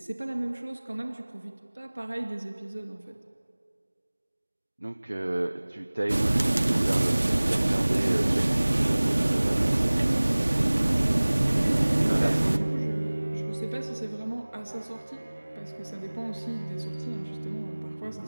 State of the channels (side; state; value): both; inverted; correlation -1.00